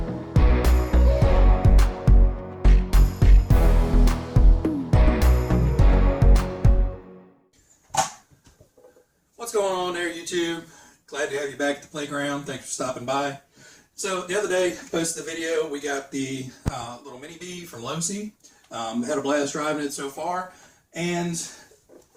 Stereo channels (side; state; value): both; identical; correlation 1.00